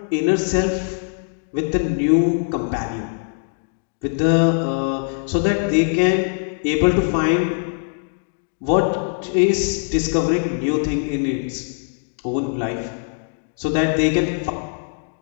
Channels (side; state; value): right; silent; digital silence